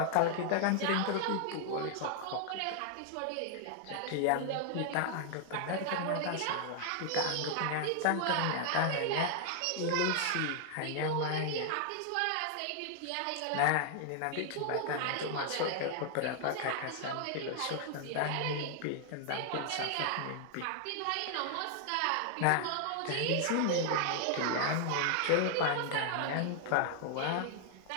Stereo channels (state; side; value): different; both; correlation 0.00